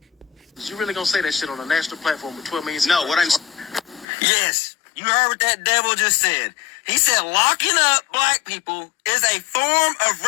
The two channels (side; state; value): right; drops out; at 4.0 s